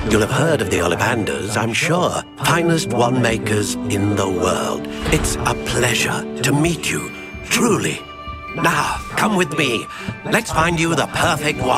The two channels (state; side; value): identical; both; correlation 1.00